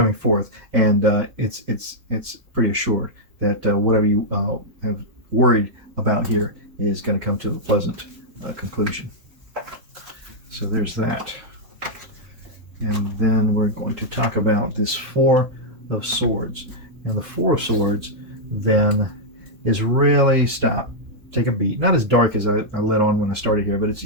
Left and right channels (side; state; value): left; late; 3.7 ms